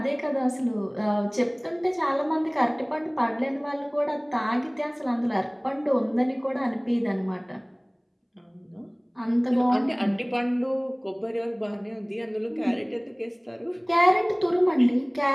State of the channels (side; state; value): both; identical; correlation 1.00